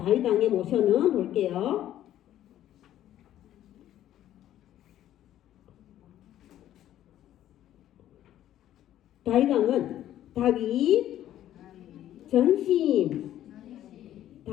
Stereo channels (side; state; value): right; quieter; 12.3 dB